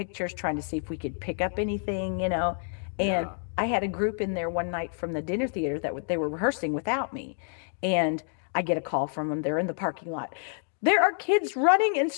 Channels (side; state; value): right; silent; 59 dB below the other